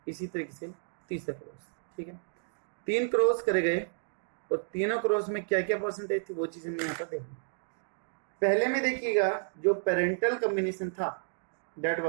इसी तरीके से तीसरा क्रॉस, ठीक है। 3 क्रॉस करे गए और तीनों क्रॉस में क्या क्या परसेंटेज थी वो चीज हमने यहाँ पर देखी। पहले में देखिएगा जो पेरेंटल कॉम्बिनेशन था दैट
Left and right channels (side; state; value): left; silent; digital silence